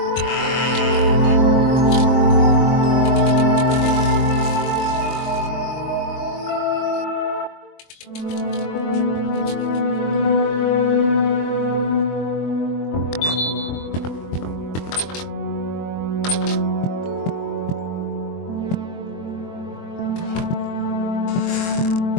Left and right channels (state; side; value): late; right; 23 ms